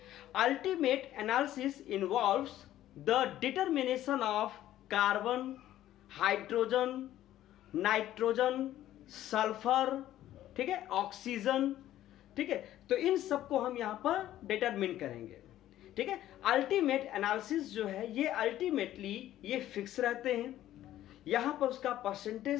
Ultimate analysis involves the determination of carbon, hydrogen, nitrogen, sulphur, ठीक है, ऑक्सीजन, ठीक है। तो इन सबको हम यहां पर डिटरमिन करेंगे, ठीक है। अल्टीमेट एनालिसिस जो है ये अल्टीमेटली ये फिक्स रहते हैं। यहां पर उसका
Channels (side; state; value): right; quieter; 13.2 dB